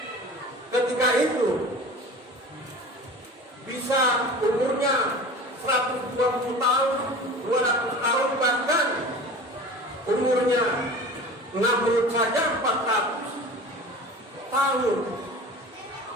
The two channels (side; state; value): both; normal; correlation 0.37